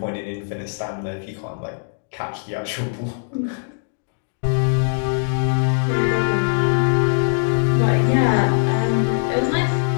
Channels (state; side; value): silent; right; digital silence